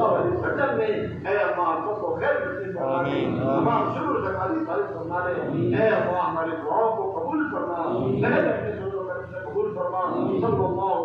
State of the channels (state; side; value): identical; both; correlation 1.00